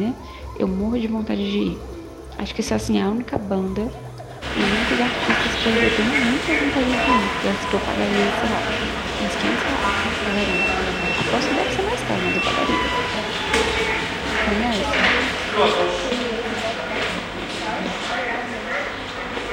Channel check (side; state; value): both; identical; correlation 1.00